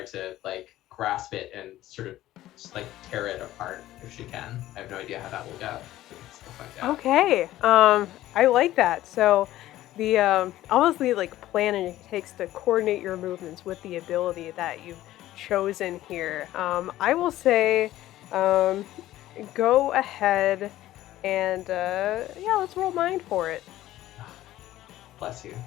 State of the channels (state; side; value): quieter; right; 14.7 dB